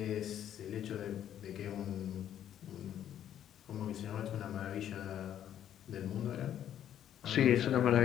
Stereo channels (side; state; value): right; quieter; 10.5 dB